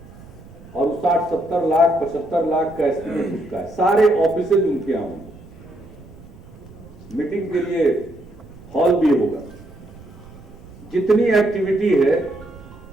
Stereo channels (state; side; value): noise; right; rumble, 20 dB below the sound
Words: और 60-70 लाख 75 लाख का एस्टिमेट उसका है। सारे ऑफिसेज उनके यहाँ होंगे, मीटिंग के लिए हॉल भी होगा, जितनी एक्टिविटी है